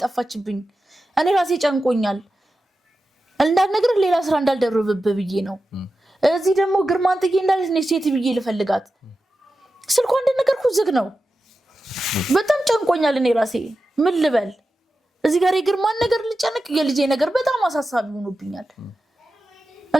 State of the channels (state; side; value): normal; both; correlation 0.92